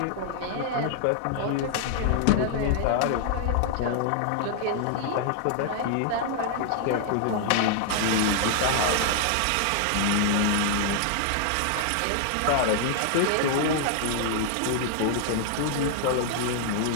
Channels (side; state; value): both; different; correlation 0.00